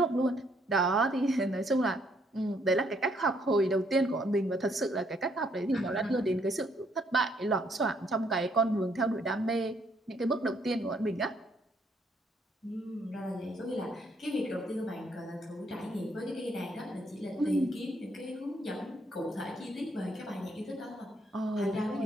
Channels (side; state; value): both; normal; correlation 0.70